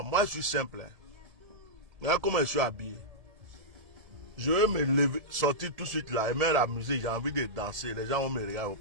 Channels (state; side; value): late; left; 1.7 ms